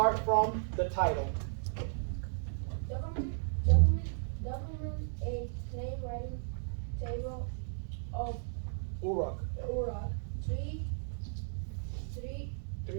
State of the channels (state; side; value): silent; left; digital silence